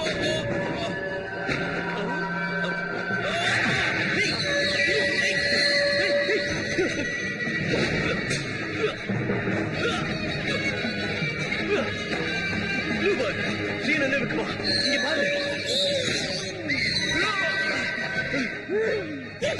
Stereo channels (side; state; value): both; identical; correlation 1.00